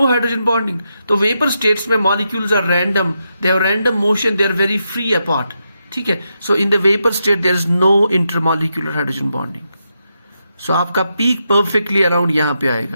hydrogen bonding. तो वेपर स्टेट्स में molecules are random, they have random motion, they are very free apart. ठीक है, so in the vapour state there is no intermolecular hydrogen bonding. सो आपका peak perfectly around यहां पे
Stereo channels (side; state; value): both; inverted; correlation -0.84